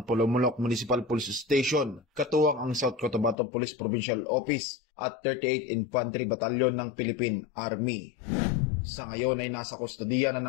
Polomolok Municipal Police Station, katuwang ang South Cotabato Police Provincial Office at 38 Infantry Battalion ng Philippine Army. Sa ngayon ay nasa kustodiya na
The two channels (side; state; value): right; drops out; at 3.4 s